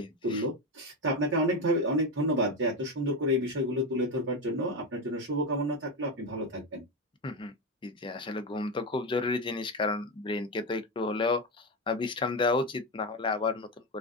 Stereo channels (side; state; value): both; normal; correlation 0.13